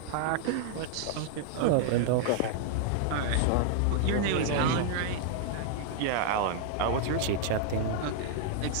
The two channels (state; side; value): different; both; correlation 0.00